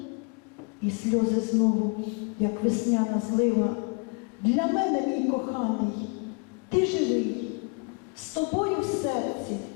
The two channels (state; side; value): quieter; right; 32.7 dB